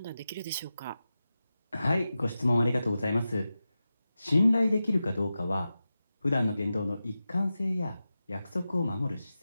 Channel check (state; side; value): inverted; both; correlation -0.93